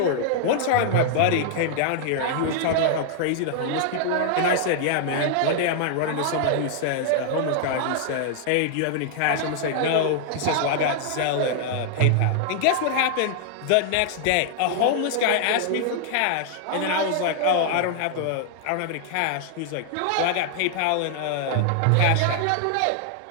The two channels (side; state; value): both; different; correlation 0.00